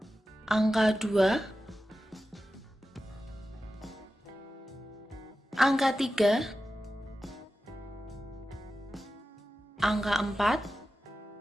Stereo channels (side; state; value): both; normal; correlation 0.93